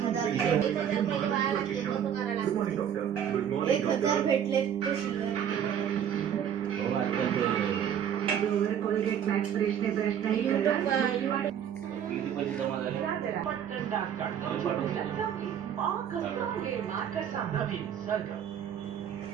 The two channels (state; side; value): quieter; left; 9.1 dB